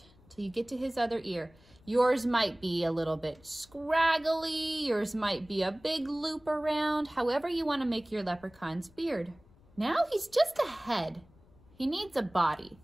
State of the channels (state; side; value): noise; left; rumble, 27 dB below the sound